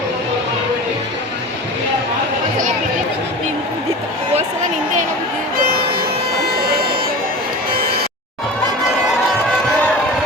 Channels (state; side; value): normal; both; correlation 0.33